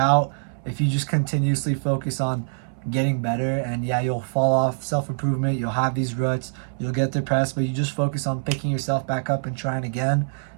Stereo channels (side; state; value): left; silent; 62 dB below the other